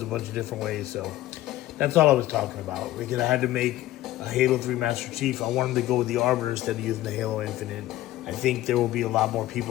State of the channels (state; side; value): quieter; right; 15.4 dB